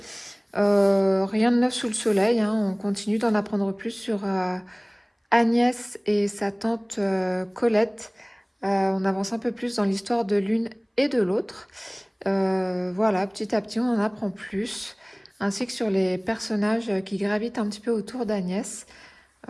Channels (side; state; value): both; identical; correlation 1.00